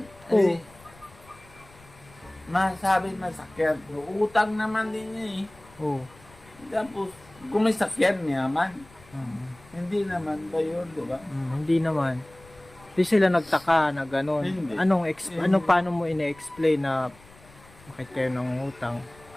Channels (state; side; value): noise; left; rumble, 25 dB below the sound